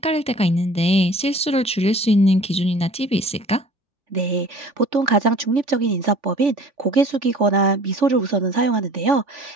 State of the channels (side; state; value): both; normal; correlation 0.48